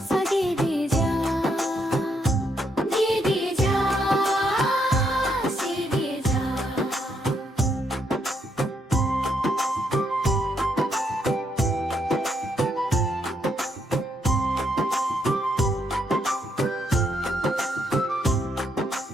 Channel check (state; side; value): normal; both; correlation 0.76